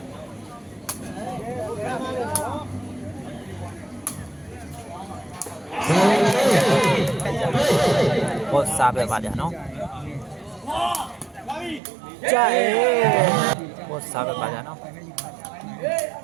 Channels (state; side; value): drops out; left; at 11.8 s